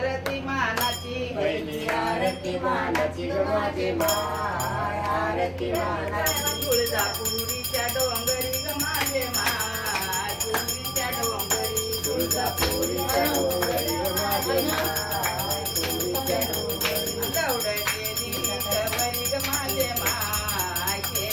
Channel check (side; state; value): both; identical; correlation 1.00